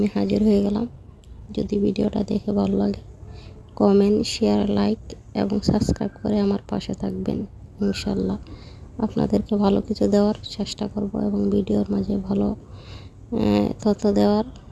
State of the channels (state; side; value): identical; both; correlation 1.00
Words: হাজির হয়ে গেলাম। যদি ভিডিওটা দেখে ভালো লাগে কমেন্ট, শেয়ার, লাইক এবং সাবস্ক্রাইব করে আমার পাশে থাকবেন। ইনশাল্লাহ আপনাদেরকে ভালো কিছু দেওয়ার চেষ্টা করব এবং ভিডিওর মাঝে ভালো তথ্য দেওয়ার